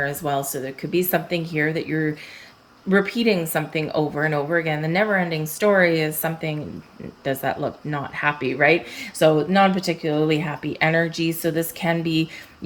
as well. So there could be something here that you're repeating something over and over again. The never ending story is something, does that look not happy, right? So non particularly happy energy. So this can be,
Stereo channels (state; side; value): identical; both; correlation 1.00